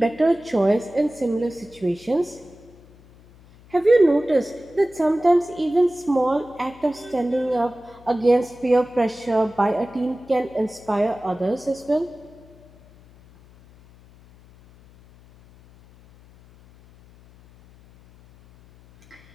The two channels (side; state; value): left; noise; hum, 25 dB below the sound